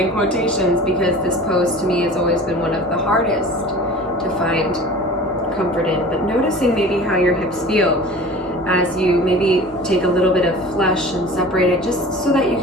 quotations because this pose to me has always been one of the hardest to find comfort in, but noticing maybe how your hips feel as you maybe take a little bit of flesh and separate it, just so that you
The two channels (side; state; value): both; normal; correlation 0.40